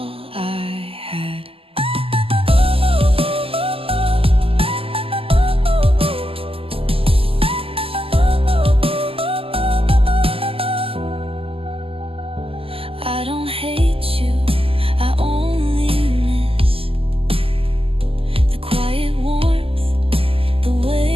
I had. I don't hate you, I only miss the quiet warmth, the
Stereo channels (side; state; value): left; late; 0.27 ms